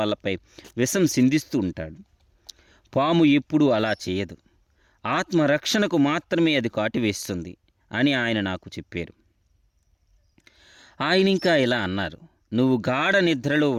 విషం సిందిస్తూ ఉంటాడు. పాము ఎప్పుడూ అలా చేయదు. ఆత్మరక్షణకు మాత్రమే అది కాటివేస్తుంది అని ఆయన నాకు చెప్పారు. ఆయన ఇంకా ఇలా అన్నారు, నువ్వు గాఢ నిద్రలో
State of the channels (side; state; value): both; identical; correlation 1.00